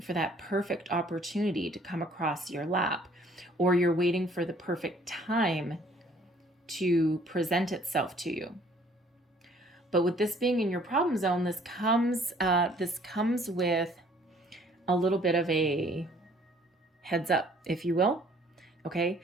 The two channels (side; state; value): both; normal; correlation 0.58